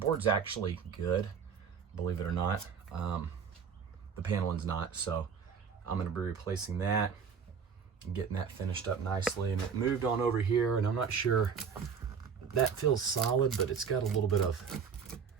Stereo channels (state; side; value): quieter; left; 6.6 dB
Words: actually good, believe it or not. The paneling's not, so I'm gonna be replacing that and getting that finished up nicely. And it moved on over here, and I'm not sure, that feels solid, but it's got a little bit of,